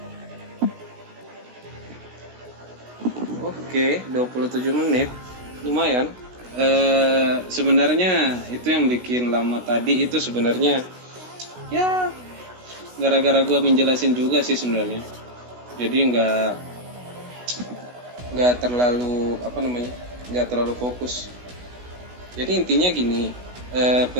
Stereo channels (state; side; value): late; left; 16 ms